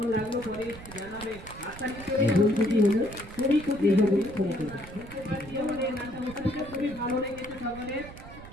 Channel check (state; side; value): noise; right; rumble, 15 dB below the sound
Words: লাগলো পরে জানাবে। আশা নিশ্চয়ই খুবই খুশি বুঝতে পারছি আমাদের নাট্য অনুষ্ঠানটা খুবই ভালো লেগেছে সকলের।